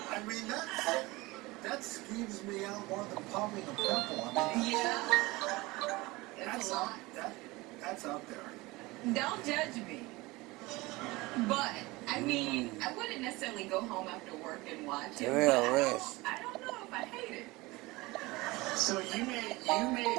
mean, that skeeves me out more than popping a pimple. I mean, Yeah. That's out there. Don't judge me. But, I mean, I wouldn't necessarily go home after work and watch it. Real But risk. I don't know if I hate it. So you may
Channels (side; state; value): left; quieter; 21.9 dB